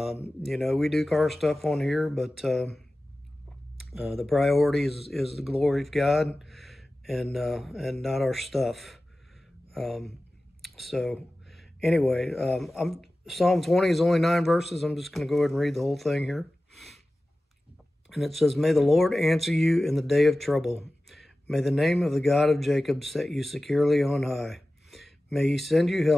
know, we do car stuff on here, but the priority is the glory of God, and not our stuff. So anyway, Psalm 20 is only 9 verses. I'm just going to go ahead and read the whole thing here. And it says, "May the Lord answer you in the day of trouble. May the name of the God of Jacob set you securely on high. May he send you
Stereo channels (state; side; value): normal; both; correlation 0.96